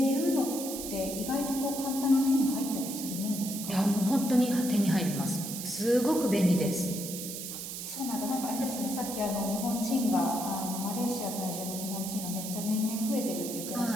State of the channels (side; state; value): right; noise; hiss, 7 dB below the sound